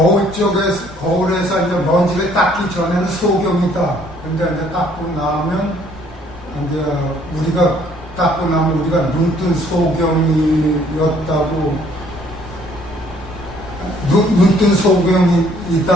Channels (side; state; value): both; normal; correlation 0.61